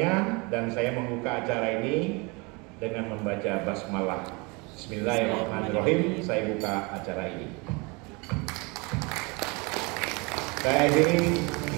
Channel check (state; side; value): quieter; left; 28.2 dB